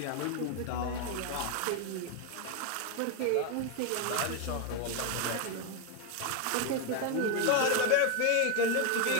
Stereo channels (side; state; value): both; different; correlation 0.01